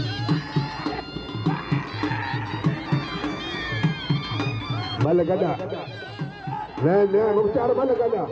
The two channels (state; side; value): identical; both; correlation 1.00